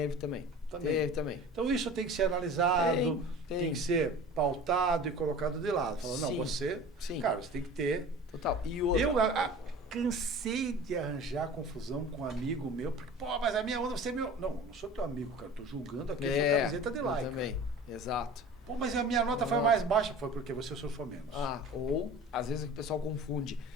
também. Então isso tem que ser analisado, tem que ser pautado e colocado de lado. Falando, não, você, cara, você tem que ter. Total. E outra, Eu cansei de arranjar confusão com um amigo meu, porque, pô, mas a minha onda, você é meu. Não sou teu amigo, cara, tô julgando aqui a sua camiseta de like. Também, exato. Pô, mas a minha nota foi mais baixa. Foi porque você surfou menos. Ou, às vezes, o pessoal confunde.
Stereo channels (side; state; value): both; normal; correlation 0.40